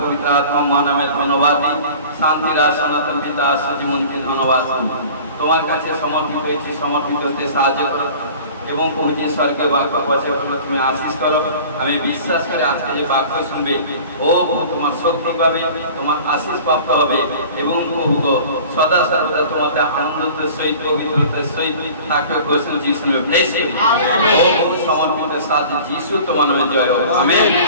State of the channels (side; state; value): both; inverted; correlation -0.43